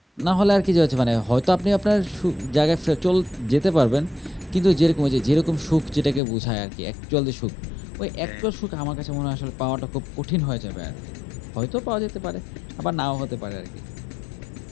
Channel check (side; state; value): right; drops out; at 6.2 s